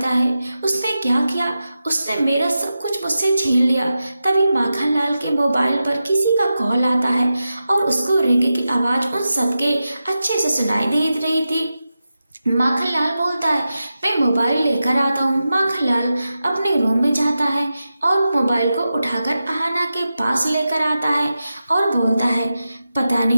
है उसने क्या किया? उसने मेरा सब कुछ मुझसे छीन लिया। तभी माखनलाल के मोबाइल पर किसी का कॉल आता है और उसको रिंग की आवाज उन सबके अच्छे से सुनाई दे रही थी। माखनलाल बोलता है, मैं मोबाइल लेकर आता हूँ। माखनलाल अपने रूम में जाता है और मोबाइल को उठाकर आहना के पास लेकर आता है और बोलता है, पता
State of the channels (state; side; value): inverted; both; correlation -0.91